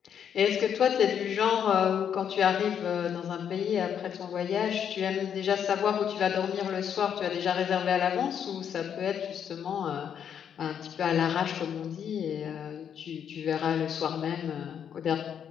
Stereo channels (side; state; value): right; quieter; 8.4 dB